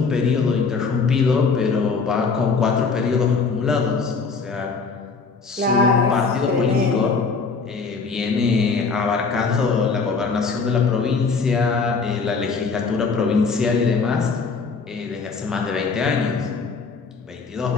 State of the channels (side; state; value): right; quieter; 4.8 dB